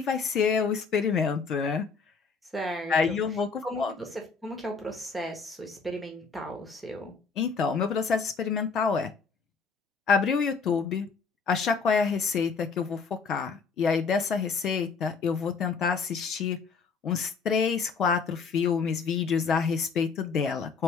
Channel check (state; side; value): quieter; right; 5.1 dB